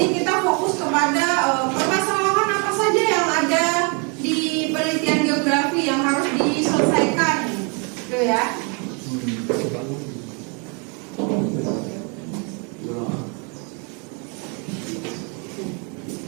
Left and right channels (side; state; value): left; quieter; 34.9 dB